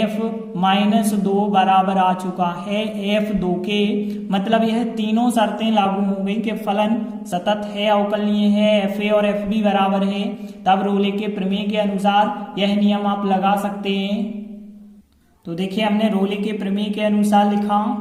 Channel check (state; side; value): identical; both; correlation 1.00